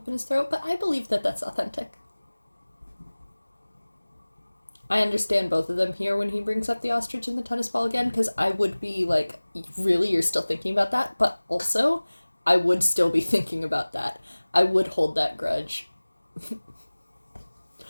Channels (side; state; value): both; inverted; correlation -1.00